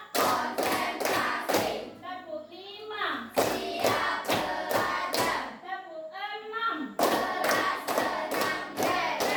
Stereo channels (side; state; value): both; identical; correlation 1.00